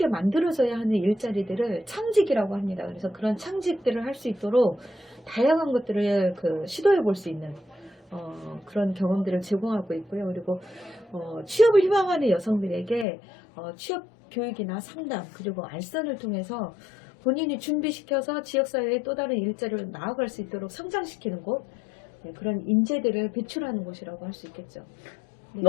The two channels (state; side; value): drops out; right; at 13.1 s